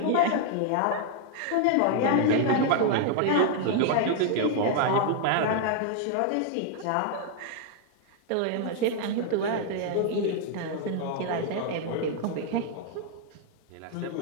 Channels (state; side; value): different; both; correlation 0.00